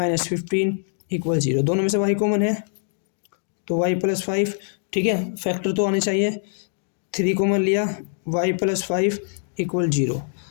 15 equal 0। दोनों में से y कॉमन है तो y + 5। ठीक है, फैक्टर तो आने चाहिए, 3 कॉमन लिया, y + 5 इक्वल 0,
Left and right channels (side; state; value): right; silent; 59 dB below the other